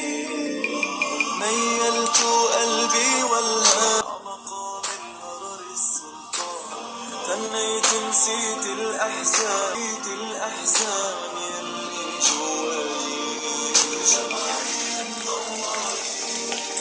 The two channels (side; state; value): both; identical; correlation 1.00